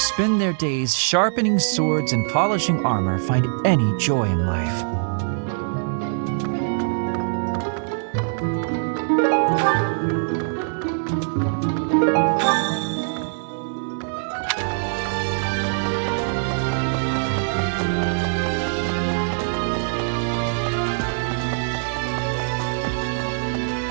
their days sharpening swords and polishing armor find any joy in life?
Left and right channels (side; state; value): left; silent; digital silence